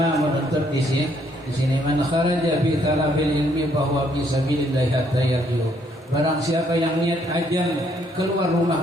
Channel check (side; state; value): both; normal; correlation 0.69